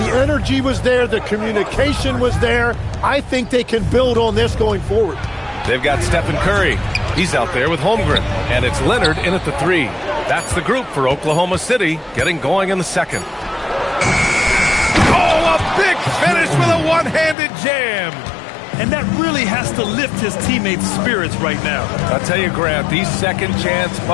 energy was there. The communication was there. I think they can build on this going forward. They've got Stephen Curry. He's out there with Holmgren. And it's Leonard in at the 3. That's the group for Oklahoma City getting going in the second. Oh, a big finish with a one-handed jam. And that really has to lift his teammates' spirits right now. I'll tell you, Grant, these second-chance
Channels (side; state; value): right; drops out; at 17.4 s